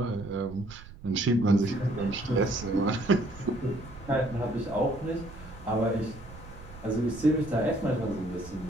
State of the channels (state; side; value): noise; right; rumble, 16 dB below the sound